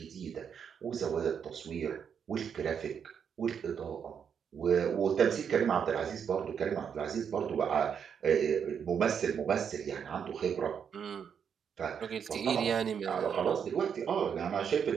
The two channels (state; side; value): quieter; left; 7.4 dB